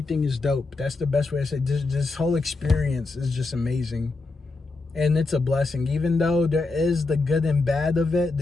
is dope. That's the best way to say it. This whole experience is just amazing. And it's a blessing. Even though there is the good and bad of it,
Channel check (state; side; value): quieter; right; 3.5 dB